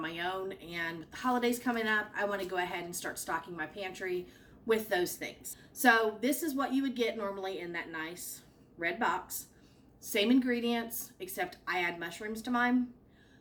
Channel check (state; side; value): identical; both; correlation 1.00